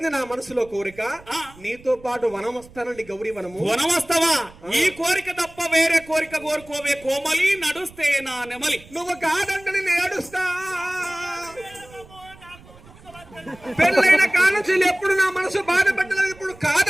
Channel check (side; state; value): right; noise; rumble, 23 dB below the sound